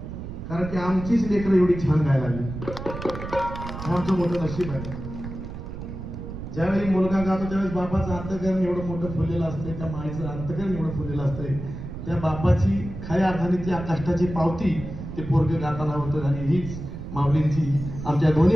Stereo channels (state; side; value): noise; right; rumble, 9 dB below the sound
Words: कारण की आमचीच लेकरं एवढी छान गायला लागली. आमचं मोठं नशीब आहे. ज्यावेळी मुलगा गातो त्यावेळेस बापाचं अंतकरण एवढं मोठं फुललेलं असतंय, त्या माईचं अंतकरण एवढं फुललेलं असतंय. त्या बापाची खऱ्या अर्थाने त्या कष्टाची पावती ते पोरगं गाताना होतं. आणि हीच माऊलींची आमच्या दोन्ही